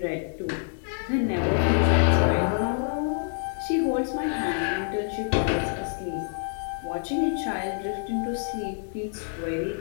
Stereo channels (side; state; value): right; silent; digital silence